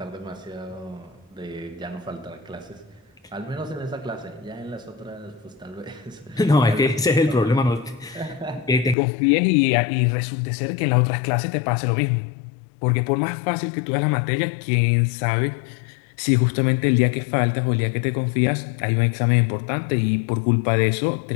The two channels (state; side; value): drops out; right; at 9.0 s